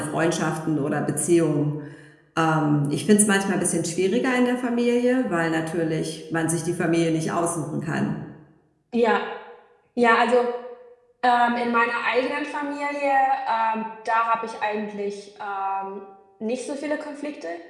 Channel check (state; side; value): identical; both; correlation 1.00